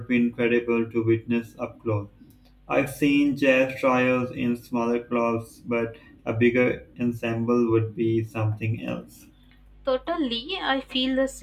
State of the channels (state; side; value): identical; both; correlation 1.00